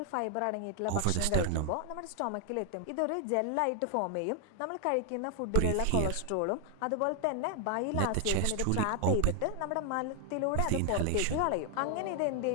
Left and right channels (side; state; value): both; different; correlation 0.00